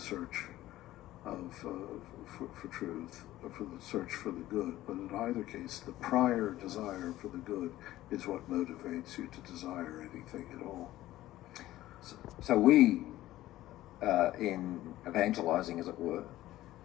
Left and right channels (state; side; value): quieter; right; 15.3 dB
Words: of for truth, or for the search for the good. But in either case, the prior desire for the good is what motivates you to desire anything at all. So we, in evangelizing, as it were,